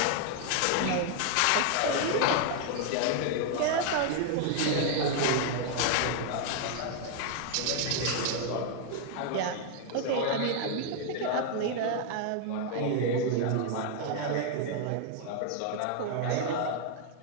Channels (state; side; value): different; both; correlation 0.00